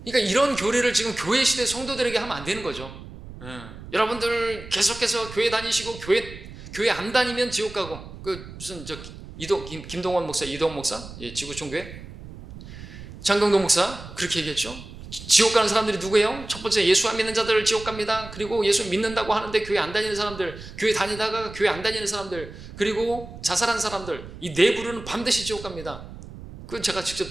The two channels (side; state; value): right; noise; rumble, 14 dB below the sound